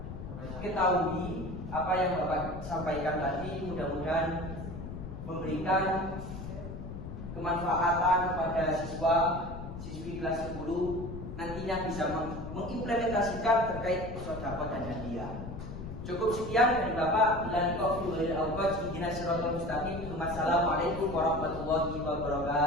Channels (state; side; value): noise; left; rumble, 9 dB below the sound